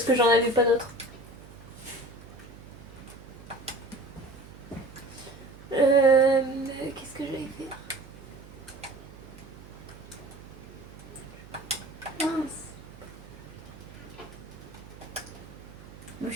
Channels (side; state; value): right; noise; hum, 18 dB below the sound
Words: que j'en avais pas d'autres. Qu'est-ce que j'allais faire? Mince. Ma